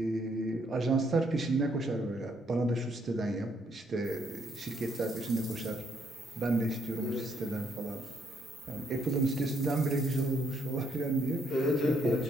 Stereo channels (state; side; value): normal; both; correlation 0.72